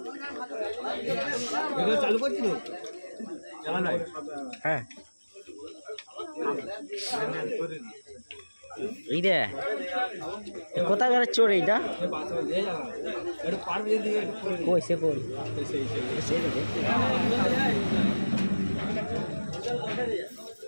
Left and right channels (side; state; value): both; inverted; correlation -1.00